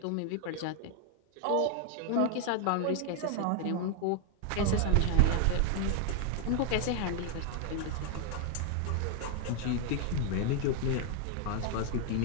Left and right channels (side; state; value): both; different; correlation 0.00